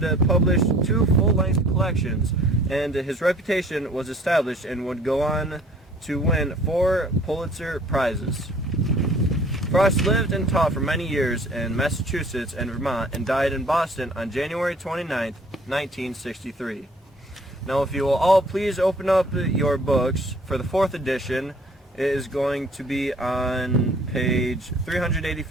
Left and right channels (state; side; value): normal; both; correlation 0.54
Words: published 2 full-length collections, and his reputation was established and would go on to win 4 Pulitzer Prizes. Frost lived and taught for many years in Massachusetts and Vermont and died in Boston on January 29, 1963. Now, if you will all please open up your books for the 4th edition. It is going to be on page